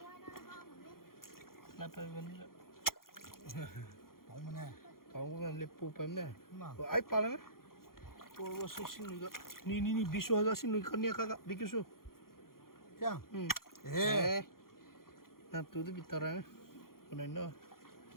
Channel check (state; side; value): late; right; 0.92 ms